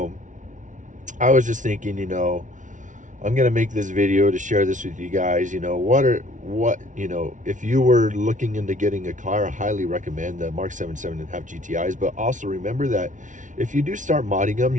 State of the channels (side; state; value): left; late; 0.37 ms